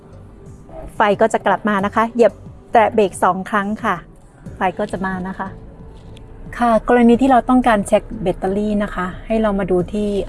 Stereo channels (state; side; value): identical; both; correlation 1.00